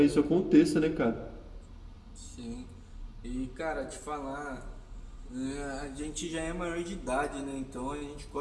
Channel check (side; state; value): both; identical; correlation 1.00